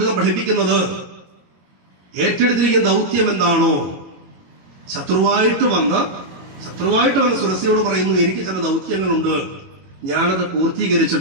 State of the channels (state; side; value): late; left; 22 ms